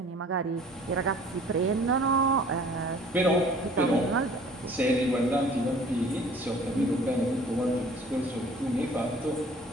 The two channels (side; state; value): both; normal; correlation 0.51